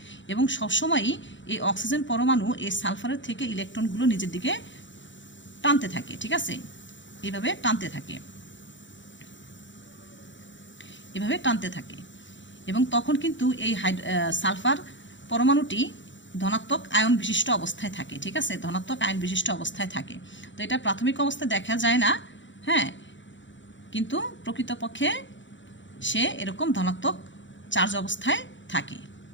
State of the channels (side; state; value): right; late; 0.54 ms